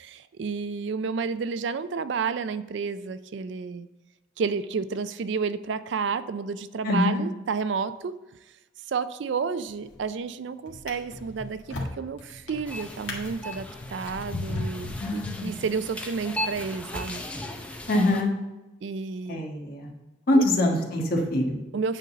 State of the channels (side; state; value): both; normal; correlation 0.37